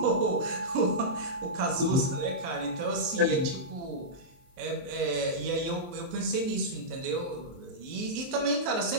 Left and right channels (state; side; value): late; left; 23 ms